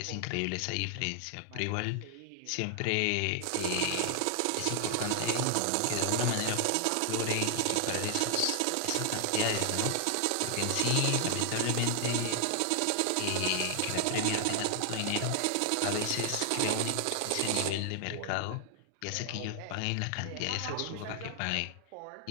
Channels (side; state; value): both; different; correlation 0.00